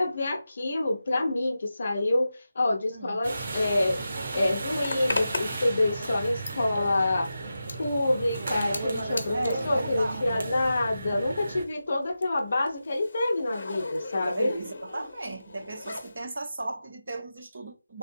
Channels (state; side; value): inverted; both; correlation -0.91